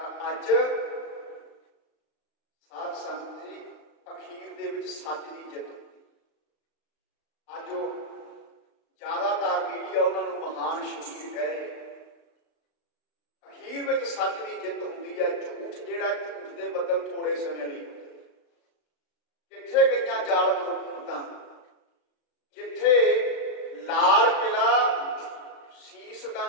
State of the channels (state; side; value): late; right; 35 ms